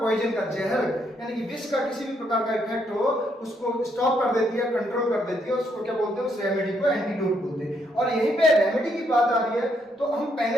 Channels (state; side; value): normal; both; correlation 0.74